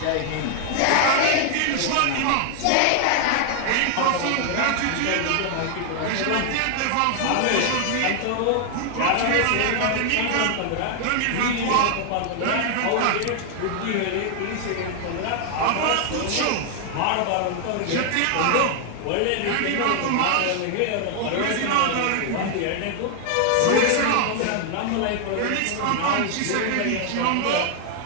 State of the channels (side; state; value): both; different; correlation 0.00